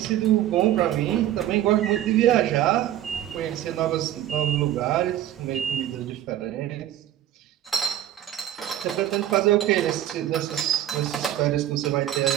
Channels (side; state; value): left; quieter; 12.3 dB